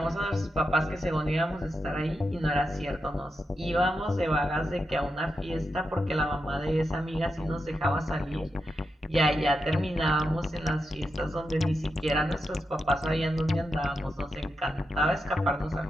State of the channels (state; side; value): normal; both; correlation 0.87